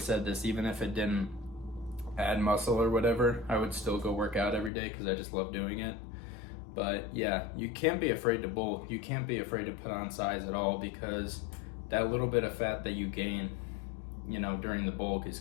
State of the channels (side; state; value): right; drops out; at 4.7 s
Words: said this, even if it didn't add muscle or whatever, I would still go work out every day because I just love doing it. But yeah, you can't be afraid to bulk. You can't be afraid to put on size at all, because that little bit of fat that you gain, you know, during the bulk is